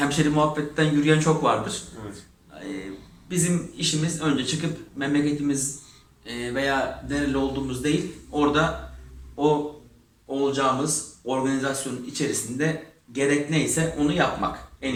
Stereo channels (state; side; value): identical; both; correlation 1.00